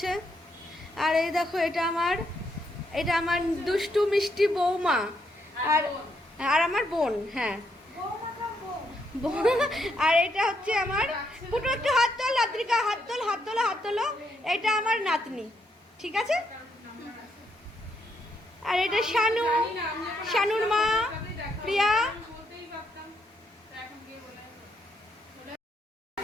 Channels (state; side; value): normal; both; correlation 0.77